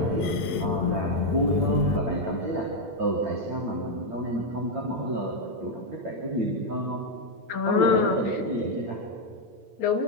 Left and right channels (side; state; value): left; late; 8.9 ms